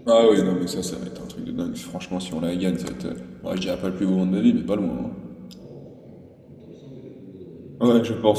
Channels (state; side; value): identical; both; correlation 1.00